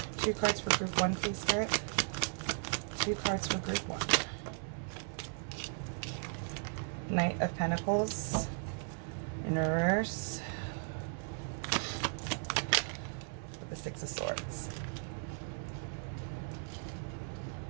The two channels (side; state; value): left; silent; 53 dB below the other